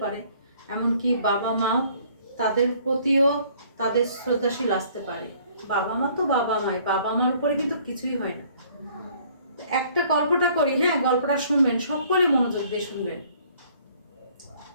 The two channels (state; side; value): inverted; both; correlation -0.59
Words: পারে, এমনকি বাবা মা তাদের প্রতিও তাদের শ্রদ্ধাশীল আসতে পারে। বাবা মা তো বাবা মাই, বাবা মার উপরে কিন্তু কিছুই হয় না। একটা গল্পটা করি, হ্যাঁ, গল্পটা শুনবেন, সকলে মনোযোগ দিয়ে শুনবেন।